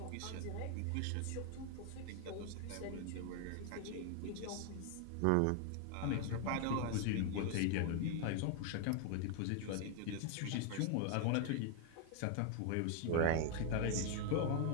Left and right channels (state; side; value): different; both; correlation 0.00